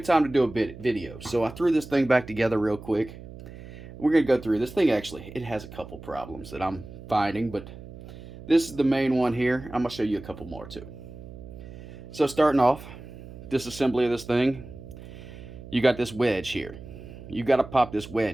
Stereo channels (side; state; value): right; noise; hum, 15 dB below the sound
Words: time to do a video. So I threw this thing back together real quick. We're going to go through this thing. Actually, it has a couple problems that I'm finding, but this is the main one here. I'm going to show you a couple more too. So starting off, disassembly of this thing, you got this wedge here. You got to pop this